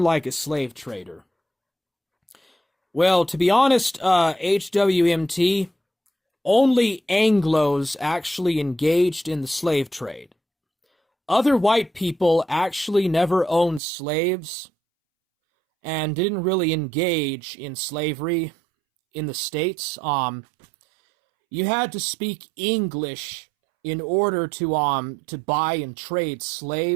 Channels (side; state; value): left; drops out; at 13.8 s